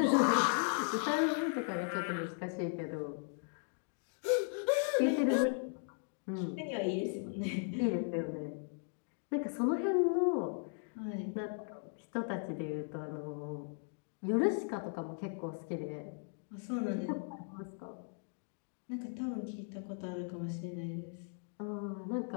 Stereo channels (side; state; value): right; silent; 53 dB below the other